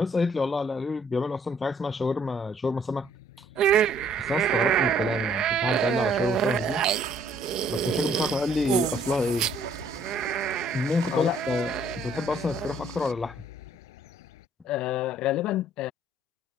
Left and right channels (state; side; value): normal; both; correlation 0.62